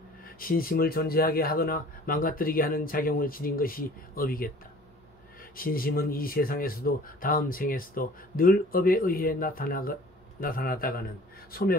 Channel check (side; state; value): both; normal; correlation 0.48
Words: 신심을 존재하게 하거나 망가뜨리게 하는 작용을 지닌 것이 업이겠다. 신심은 이 세상에서도 다음 생에서도 늘 업에 의해 나타나다가는